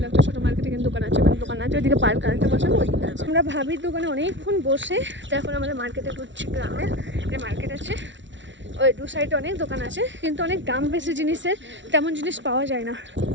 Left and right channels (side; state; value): left; late; 0.54 ms